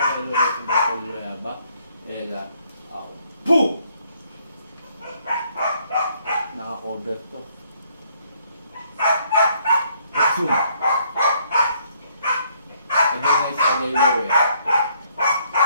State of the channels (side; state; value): both; inverted; correlation -0.67